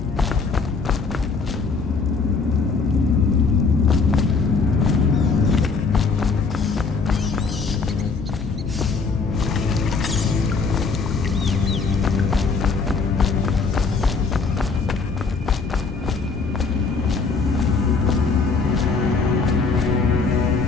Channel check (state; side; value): quieter; right; 4.6 dB